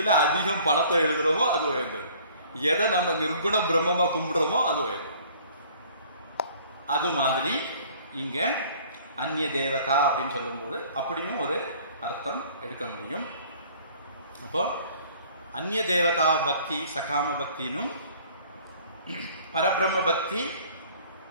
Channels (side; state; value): both; inverted; correlation -0.53